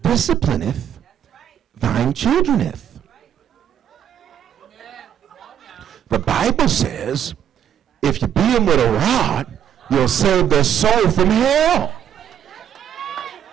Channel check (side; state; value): left; quieter; 9.7 dB